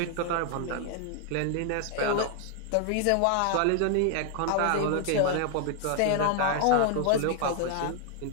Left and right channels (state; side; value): different; both; correlation 0.00